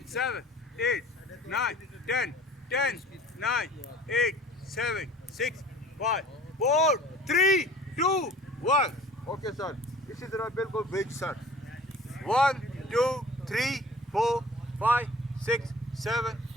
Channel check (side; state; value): both; normal; correlation 0.47